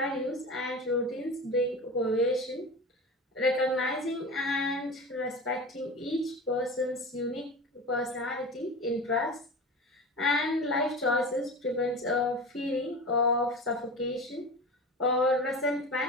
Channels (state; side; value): normal; both; correlation 0.31